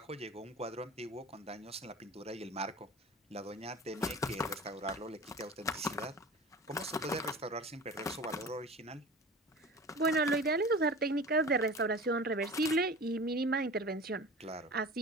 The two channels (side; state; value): both; normal; correlation 0.37